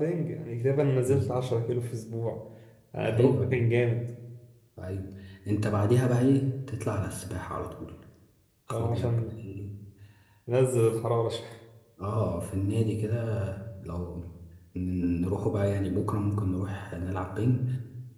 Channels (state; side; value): identical; both; correlation 1.00